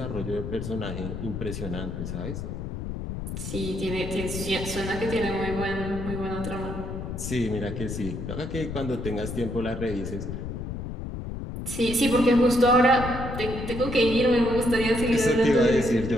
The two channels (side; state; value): left; noise; rumble, 6 dB below the sound